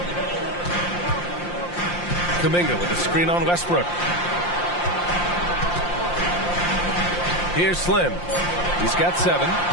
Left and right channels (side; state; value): right; late; 5.7 ms